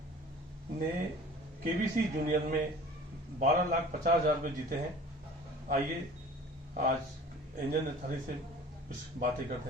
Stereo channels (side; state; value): both; normal; correlation 0.46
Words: ने केबीसी जूनियर में 12,50,000 रुपये जीते हैं। आइए आज एंजल नथानी से कुछ बातें करते